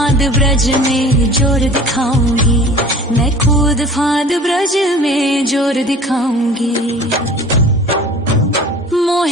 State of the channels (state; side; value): normal; both; correlation 0.44